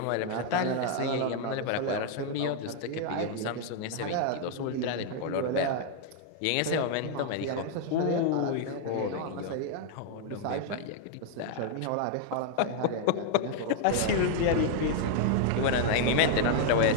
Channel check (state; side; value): different; both; correlation 0.00